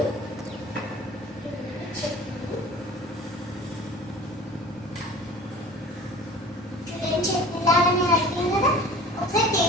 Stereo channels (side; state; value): both; normal; correlation 0.43